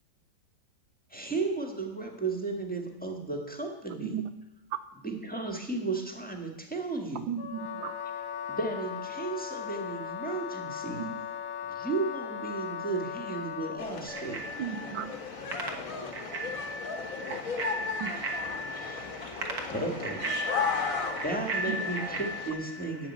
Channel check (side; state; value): both; normal; correlation 0.05